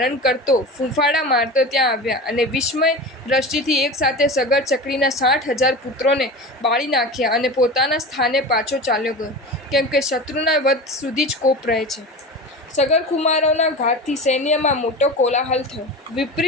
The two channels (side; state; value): both; normal; correlation 0.30